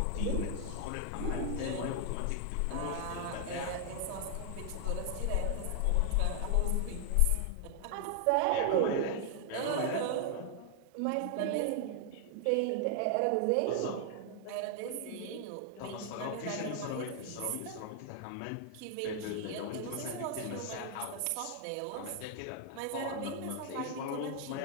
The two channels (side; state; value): both; different; correlation 0.00